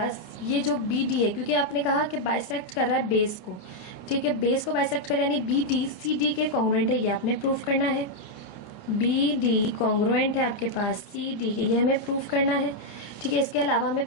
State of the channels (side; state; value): right; late; 29 ms